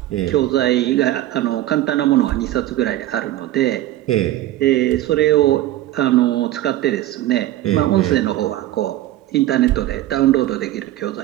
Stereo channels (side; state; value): left; quieter; 14.7 dB